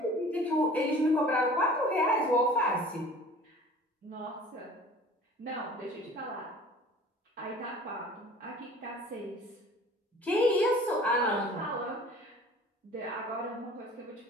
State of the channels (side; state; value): both; normal; correlation 0.46